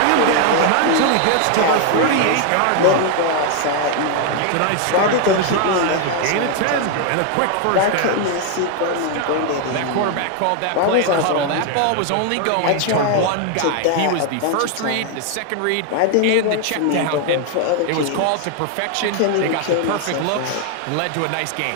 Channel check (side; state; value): both; different; correlation 0.00